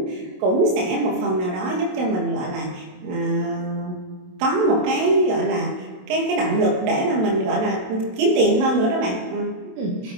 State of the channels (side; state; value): left; late; 27 ms